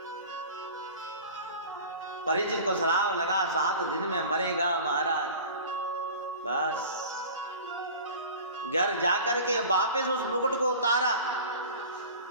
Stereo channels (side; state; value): both; inverted; correlation -0.39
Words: परीक्षित को श्राप लगा 7 दिन में मरेगा महाराज। बस घर जाकर के वापस उस मुकुट को उतारा।